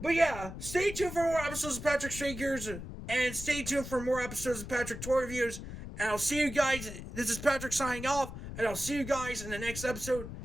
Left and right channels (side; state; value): left; noise; rumble, 10 dB below the sound